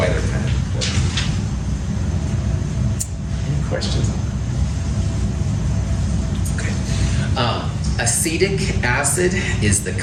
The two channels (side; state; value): both; identical; correlation 1.00